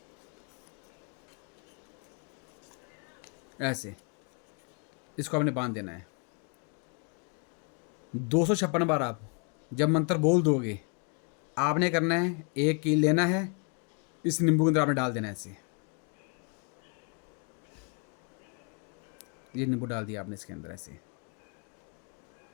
ऐसे इसको आपने बांध देना है 256 बार। आप जब मंत्र बोल दोगे, आपने करना है, एक कील लेना है, इस नींबू के अंदर आपने डाल देना है ऐसे। ये नींबू डाल दिया आपने इसके अंदर ऐसे।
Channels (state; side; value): quieter; right; 38.3 dB